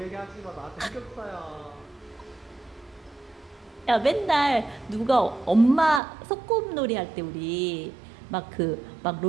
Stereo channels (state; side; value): drops out; left; at 6.0 s